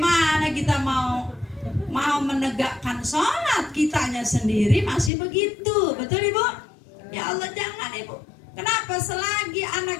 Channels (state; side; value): drops out; right; at 5.1 s